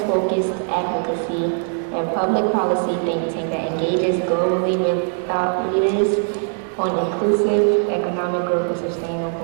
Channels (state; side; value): silent; left; 56 dB below the other